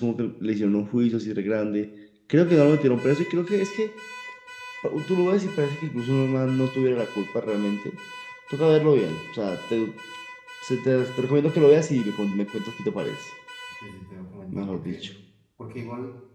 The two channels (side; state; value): both; identical; correlation 1.00